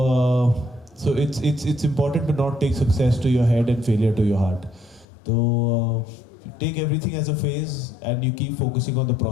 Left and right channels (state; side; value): drops out; right; at 5.1 s